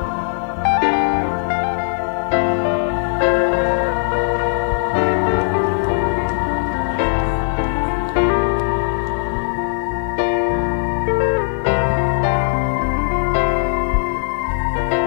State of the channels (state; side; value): silent; right; digital silence